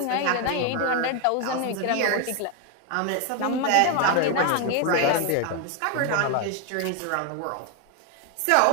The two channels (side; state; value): both; different; correlation 0.01